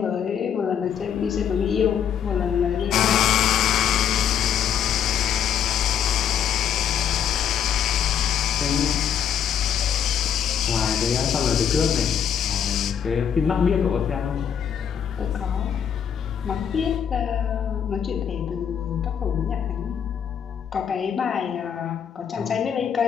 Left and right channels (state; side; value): quieter; right; 8.4 dB